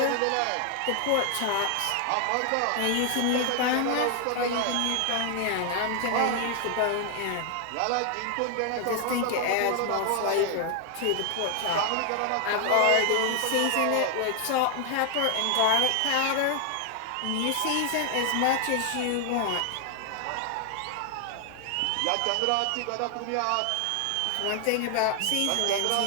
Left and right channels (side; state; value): both; different; correlation 0.00